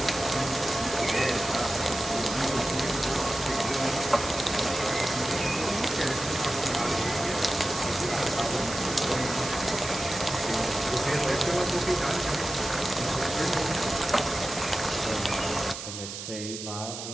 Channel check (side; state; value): right; noise; hiss, 8 dB below the sound